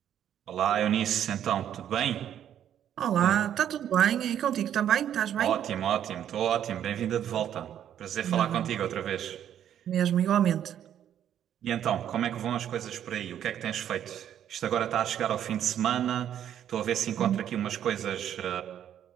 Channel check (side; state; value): left; quieter; 10.1 dB